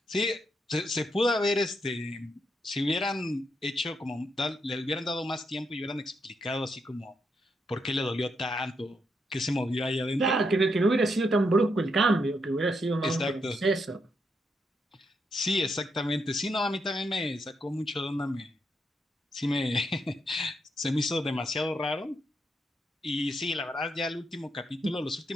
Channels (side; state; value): both; normal; correlation 0.80